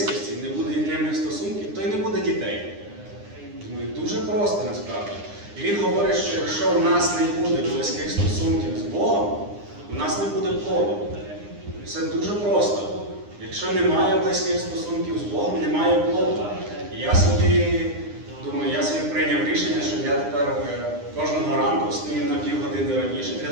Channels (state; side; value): late; left; 9.8 ms